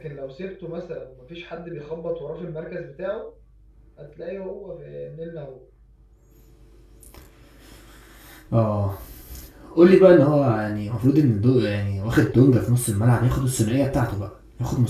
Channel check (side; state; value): both; identical; correlation 1.00